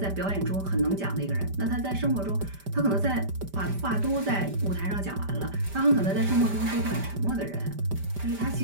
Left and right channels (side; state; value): left; late; 5.1 ms